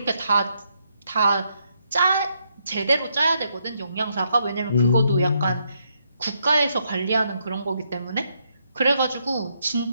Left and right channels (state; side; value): inverted; both; correlation -0.77